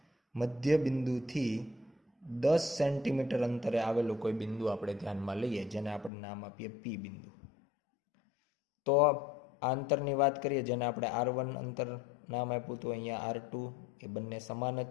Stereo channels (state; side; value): drops out; right; at 6.1 s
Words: મધ્ય બિંદુથી 10 સેન્ટીમીટર અંતરે આવેલું કોઈ બિંદુ આપણે ધ્યાનમાં લઈએ, જેને આપણે નામ આપીએ P બિંદુ. તો આ અંતરની વાત કરીએ, જેને આપણે R1 અંતર નામ આપ્યું હતું, અહીંયા R2, એ બંને સમાન જ